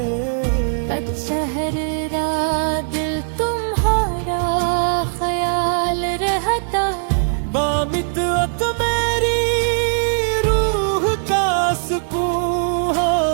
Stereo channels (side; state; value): left; silent; 63 dB below the other